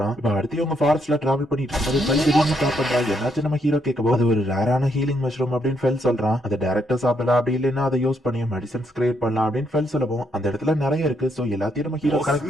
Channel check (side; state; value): both; normal; correlation 0.75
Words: இப்ப அடுத்து அவங்க ஃபாரஸ்ட்ல டிராவல் பண்ணிட்டு இருக்கும்போது திடீர்னு சாப்பிடுறான். என்னாச்சு நம்ம ஹீரோ கேட்கவோ அது ஒரு ரேரான ஹீலிங் மஷ்ரூம் அப்படின்னு ஃபெல் சொல்றான். அதை டைரக்டா சாப்பிடலாம், அப்படி இல்லைன்னா அதை யூஸ் பண்ணி மெடிசன்ஸ் கிரியேட் பண்ணலாம் அப்படின்னு ஃபெல் சொல்லவும் அந்த இடத்துல நிறைய இருக்கு. சோ எல்லாத்தையும் நம்ம ஹீரோ கனெக்ட்